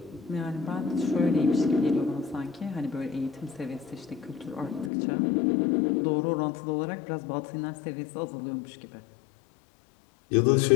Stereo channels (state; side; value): drops out; right; at 4.9 s